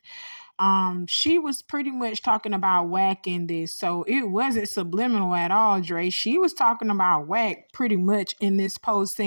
She was pretty much talking about Whack in this, so it wasn't subliminal at all, Dre. She was talking about Whack pretty much in this post,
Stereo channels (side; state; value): both; inverted; correlation -1.00